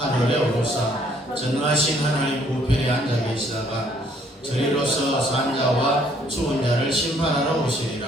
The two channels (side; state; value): both; normal; correlation 0.64